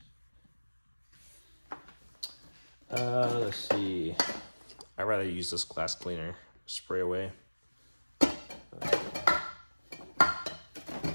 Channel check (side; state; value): both; inverted; correlation -1.00